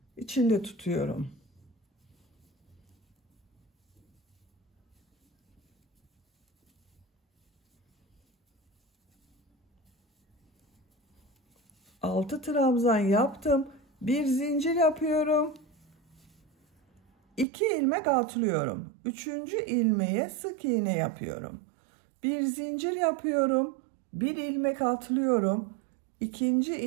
içinde tutuyorum. Altı trabzan yaptım. Bir zincir yapıyorum. 2 ilmek atlıyorum. 3. ilmeğe sık iğne yapıyorum. Bir zincir yapıyorum. Bir ilmek atlıyorum. 2.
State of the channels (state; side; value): drops out; left; at 17.4 s